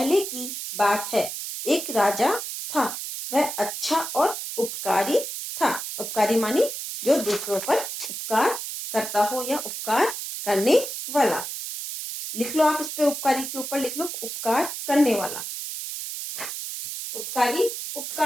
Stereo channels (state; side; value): noise; right; hiss, 6 dB below the sound